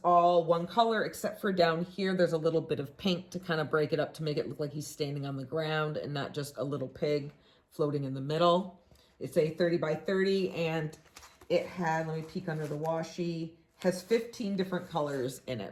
all one color, except for down here, there's a little bit of pink to kind of break it up to make it look like he's standing on the ground and not just a little pig floating in the middle. It's a 30 by 30, and it had, let me peek under the washi, has 15 different colors in it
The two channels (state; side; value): identical; both; correlation 1.00